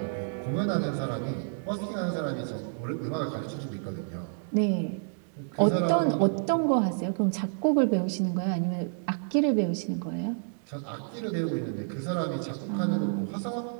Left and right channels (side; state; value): left; silent; digital silence